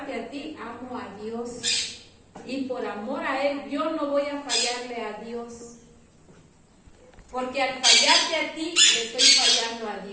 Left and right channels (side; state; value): both; identical; correlation 1.00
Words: a ti, amo a Dios. Y por amor a Él, yo no voy a fallarle a Dios. Porque al fallarte a ti, le estoy fallando a